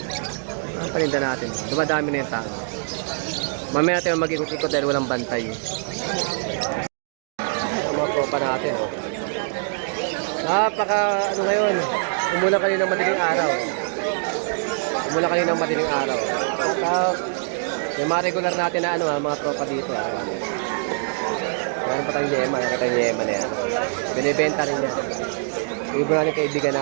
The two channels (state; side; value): silent; left; 63 dB below the other